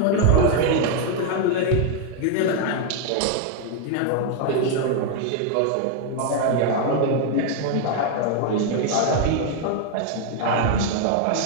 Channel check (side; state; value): both; different; correlation 0.00